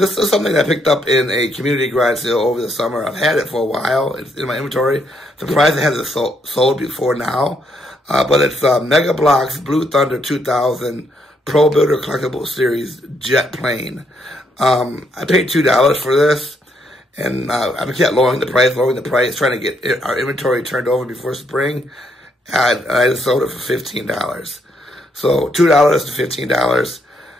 is something I picked up in a community garage sale over the summer. I've had it for a while. It's in my inventory. Surprised it hasn't sold before now. But it's Mega Bloks Blue Thunder 2000 Pro Builder Collectible Series Jet Plane. I paid $2 for this, and I kept lowering the price, trying to get our inventory turned over before spring. I just sold it for $15. So $2 to $15.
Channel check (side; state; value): both; normal; correlation 0.74